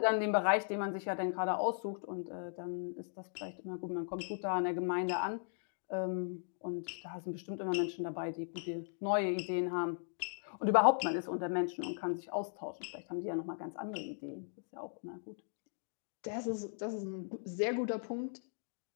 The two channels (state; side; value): silent; right; digital silence